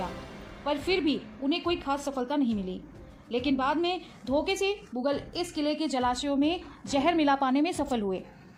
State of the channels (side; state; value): both; identical; correlation 1.00